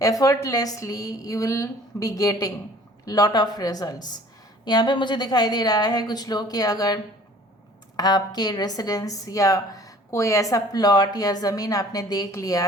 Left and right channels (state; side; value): normal; both; correlation 0.51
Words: Effortlessly you will be getting lot of results. यहाँ पे मुझे दिखाई दे रहा है कुछ लोग कि अगर आपके रेसिडेंस या कोई ऐसा प्लॉट या ज़मीन आपने देख लिया